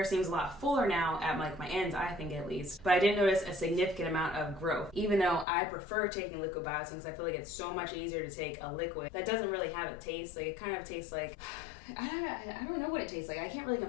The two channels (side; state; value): right; drops out; at 5.5 s